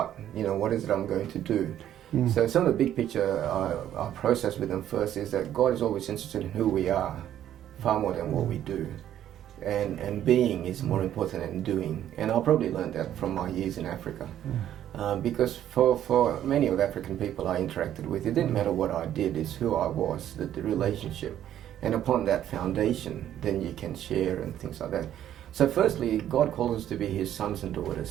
what is it I'm going to do? So some of the big picture I process with them first is that God is always interested in who we are, far more than what we do. And being is more important than doing. And I probably learned that from my years in Africa. Because for many of the African people I interacted with, it didn't matter what I did, it's who I was, the relationship. And upon that foundation, then you can share and things like that. So firstly, God calls us to be His sons and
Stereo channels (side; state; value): left; quieter; 11.2 dB